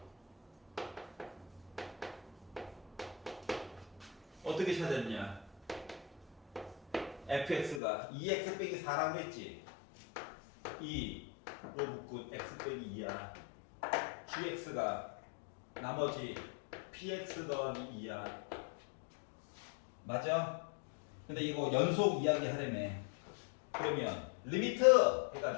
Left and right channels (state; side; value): drops out; right; at 7.8 s